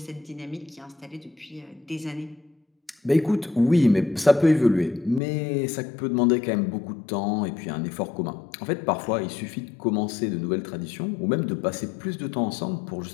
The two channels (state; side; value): drops out; right; at 5.2 s